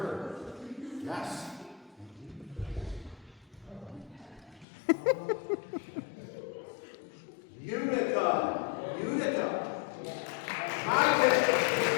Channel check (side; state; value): right; drops out; at 4.7 s